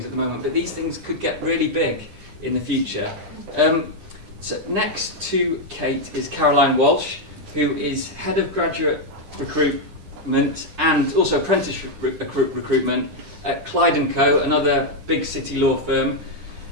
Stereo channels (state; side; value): late; left; 10 ms